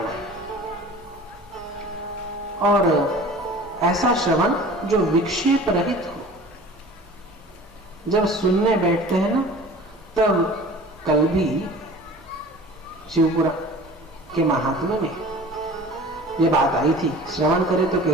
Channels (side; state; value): both; normal; correlation 0.42